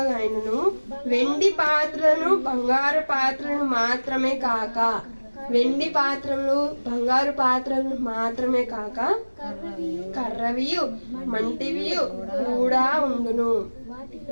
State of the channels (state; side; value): inverted; both; correlation -1.00